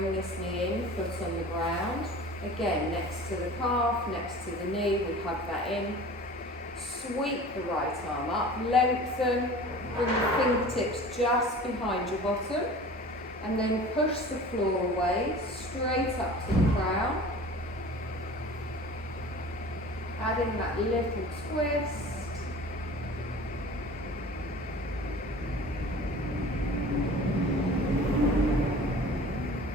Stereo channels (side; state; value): both; normal; correlation 0.41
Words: this knee in, foot on the ground. Again, next to the calf, next to the knee, we hug that in. Sweep the right arm up, lengthen, bring the fingertips just behind your bottom, and then push the floor away, straight up to the crown. Add in that little twist.